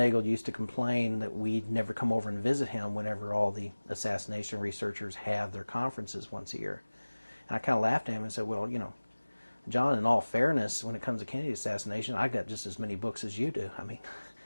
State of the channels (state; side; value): inverted; both; correlation -1.00